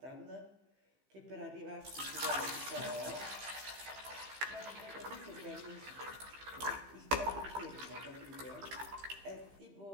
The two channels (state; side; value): late; left; 15 ms